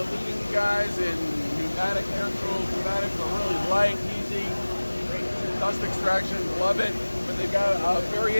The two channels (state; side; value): inverted; both; correlation -1.00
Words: leading guys in pneumatic air tools. Pneumatics are really light, easy, great dust extraction, love it. But they've got a